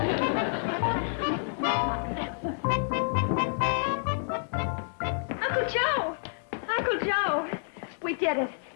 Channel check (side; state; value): right; silent; digital silence